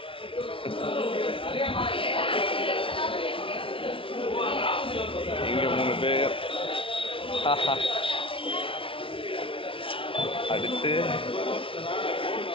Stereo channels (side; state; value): right; late; 0.26 ms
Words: இங்கே 3 பேர். அடுத்து